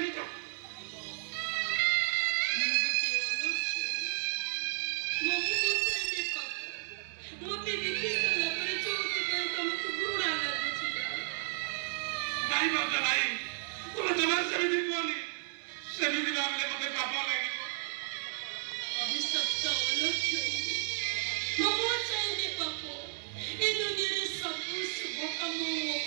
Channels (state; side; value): silent; left; digital silence